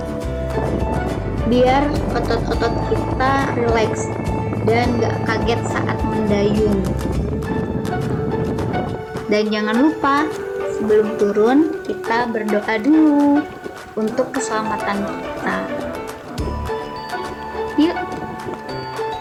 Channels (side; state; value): both; identical; correlation 1.00